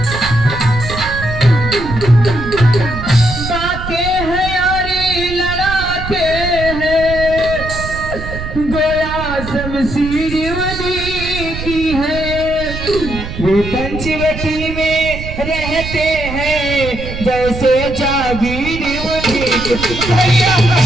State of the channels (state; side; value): noise; right; rumble, 8 dB below the sound